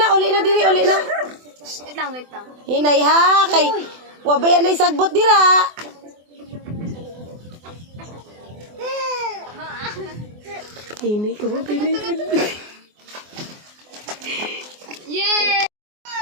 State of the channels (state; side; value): late; left; 24 ms